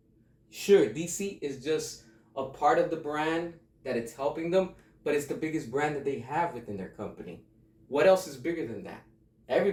Sure, DC is just a part of the brand that it's helping them, but it's the biggest brand that they have within their company. What else is bigger than that?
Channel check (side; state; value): both; identical; correlation 1.00